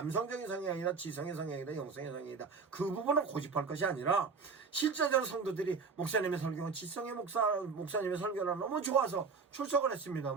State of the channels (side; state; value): left; quieter; 5.0 dB